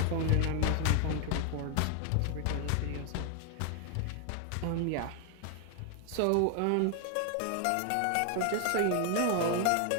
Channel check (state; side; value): different; both; correlation 0.00